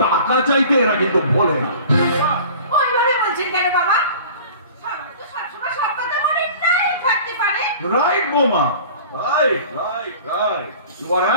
টাকা চাইতে এরা কিন্তু ভোলে না। ওইভাবে বলছেন কেন বাবা? সবসময় সব কথা মনে নাই থাকতে পারে। রাইট বোমা, right right right, you are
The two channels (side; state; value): both; inverted; correlation -0.43